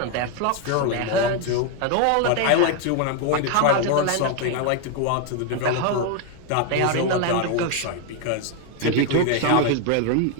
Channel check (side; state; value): both; different; correlation 0.01